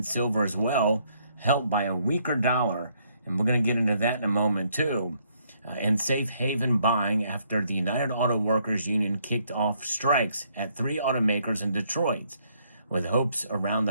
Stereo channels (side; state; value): both; inverted; correlation -0.70